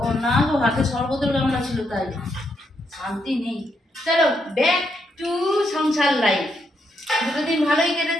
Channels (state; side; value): normal; both; correlation 0.78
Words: না গো, হাতে শরবতের গামলা ছিল তাই শান্তি নেই। চলো ব্যাক টু সংসার লাইফ। দুটো দিন ভালোই